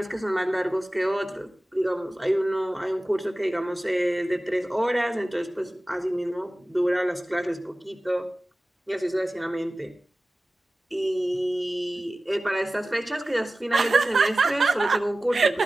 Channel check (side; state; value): both; normal; correlation 0.96